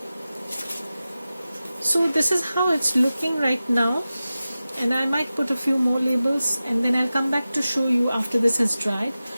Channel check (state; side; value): inverted; both; correlation -0.94